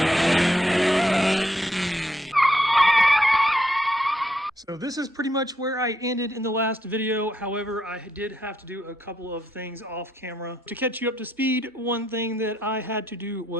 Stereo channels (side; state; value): both; normal; correlation 0.77